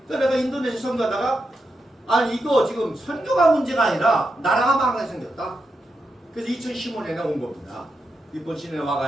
내가 인도네시아 선교하다가 아니 이거 지금 선교가 문제가 아니라 나라가 망하게 생겼다. 그래서 2015년에 온 겁니다. 일본 시내에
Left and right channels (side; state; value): both; normal; correlation 0.86